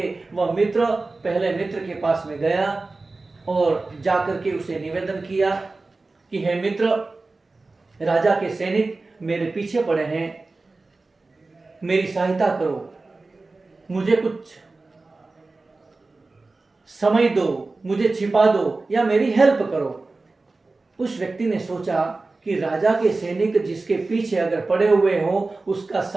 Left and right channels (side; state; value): left; quieter; 3.5 dB